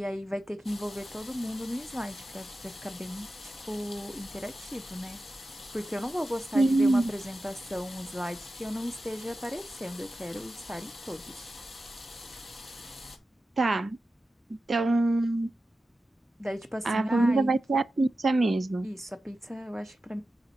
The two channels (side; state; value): both; normal; correlation 0.93